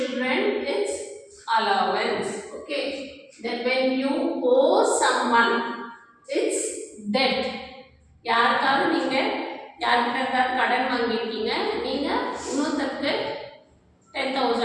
it's allowance, okay. Then when you owe someone it's debt. யாருக்காவது நீங்கள் யார்கிட்ட இருந்தாலும் கடன் வாங்கியிருக்கீங்க, நீங்கள் இன்னொருத்தருக்கு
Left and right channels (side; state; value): both; identical; correlation 1.00